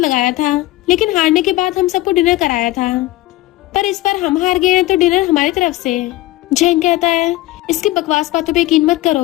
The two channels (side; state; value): right; quieter; 17.5 dB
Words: लगाया था, लेकिन हारने के बाद हम सबको डिनर कराया था, पर इस बार हम हार गए हैं तो डिनर हमारी तरफ से। झैंग कहता है, इसकी बकवास बातों पे यकीन मत